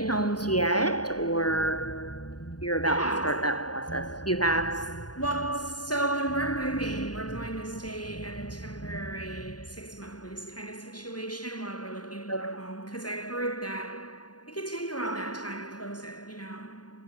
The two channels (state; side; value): late; right; 0.69 ms